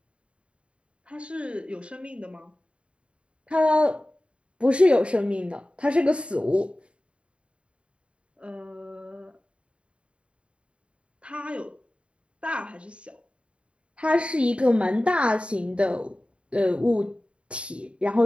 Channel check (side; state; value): left; late; 0.058 ms